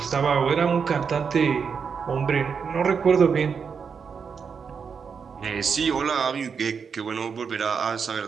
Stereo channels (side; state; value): left; quieter; 6.1 dB